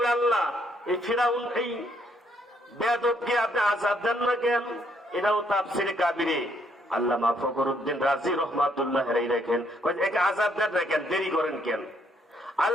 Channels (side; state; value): both; normal; correlation 0.70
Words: বলে, আল্লাহ, এই ফিরাউন, এই বেয়াদবকে আপনি আযাব দেন না কেন? এটাও তাফসীরে কাবীরে আল্লামা ফখরুদ্দিন রাজি রহমাতুল্লাহ আলাইহি লেখেন, একে আযাব দেন না কেন, দেরি করেন কেন?